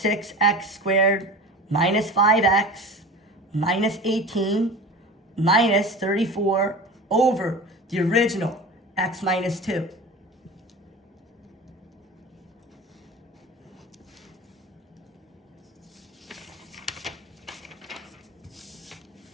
squared minus 5x minus 18 minus 34 over the original x minus 2.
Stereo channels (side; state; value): both; normal; correlation 0.34